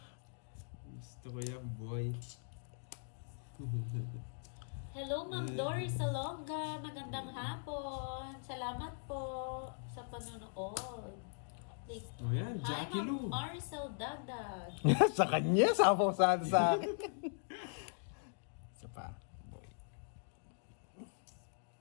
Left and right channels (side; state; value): right; silent; digital silence